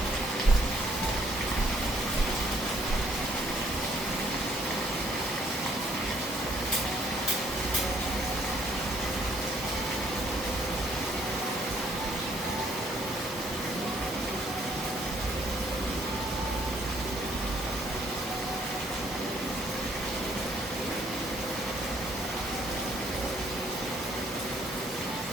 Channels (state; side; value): normal; both; correlation 0.65